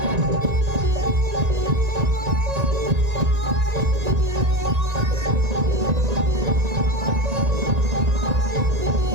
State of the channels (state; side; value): late; left; 1.9 ms